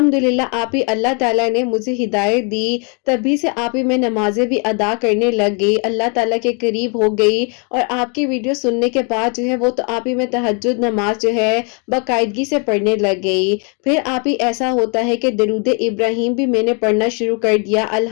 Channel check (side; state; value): right; quieter; 36.0 dB